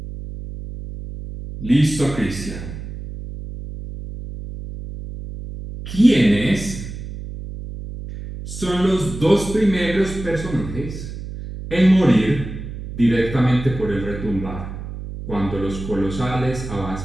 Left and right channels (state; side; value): noise; right; hum, 9 dB below the sound